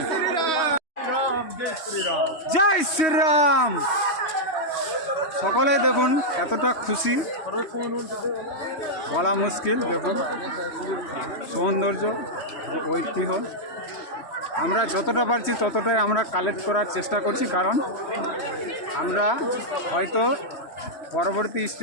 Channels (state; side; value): late; right; 3.1 ms